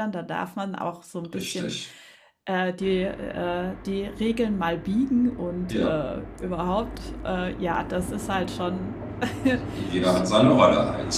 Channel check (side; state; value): both; identical; correlation 1.00